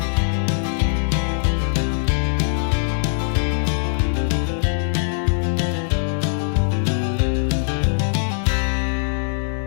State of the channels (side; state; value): right; silent; digital silence